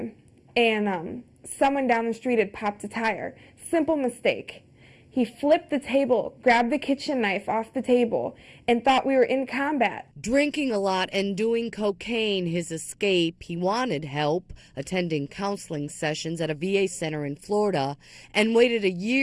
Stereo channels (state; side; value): identical; both; correlation 1.00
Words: and someone down the street had popped a tire. Simple mistake. He flipped the table, grabbed the kitchen knife off the table, and thought we were in combat. Drinking a lot and doing cocaine his escape, he wanted help, attending counseling sessions at a VA center in Florida, and waited a